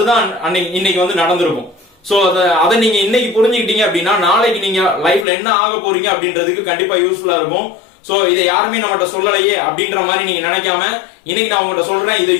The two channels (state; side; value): drops out; right; at 5.2 s